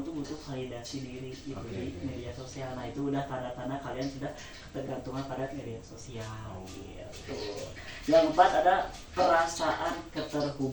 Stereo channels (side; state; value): both; identical; correlation 1.00